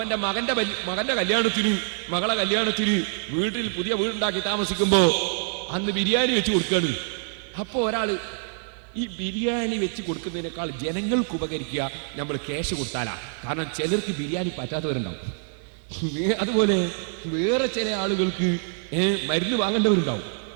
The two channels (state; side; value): silent; left; digital silence